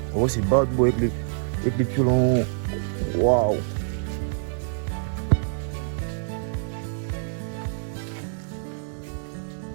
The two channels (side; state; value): left; silent; digital silence